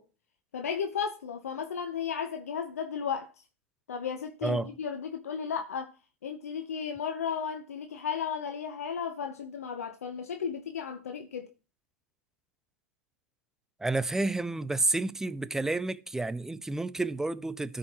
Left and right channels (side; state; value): both; normal; correlation 0.29